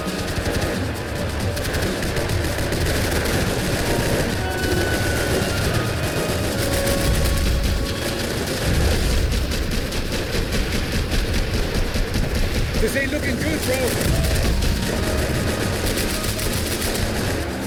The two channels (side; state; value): both; identical; correlation 1.00